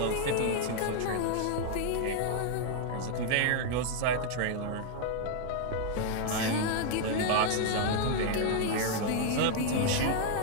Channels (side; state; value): both; different; correlation 0.00